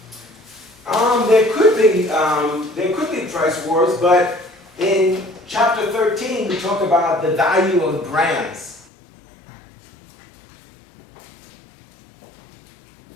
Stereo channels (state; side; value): drops out; right; at 8.8 s